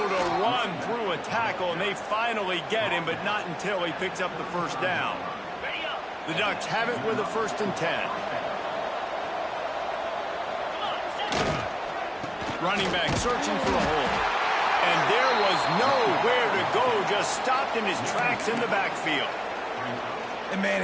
to run through a tackle, and they finally get him, but not until he picks up the 1st down. The Ducks have it with a 1st and 10. Running back searching for a hole. And there was nowhere to go, just stopped in his tracks in the backfield. And, man,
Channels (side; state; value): both; identical; correlation 1.00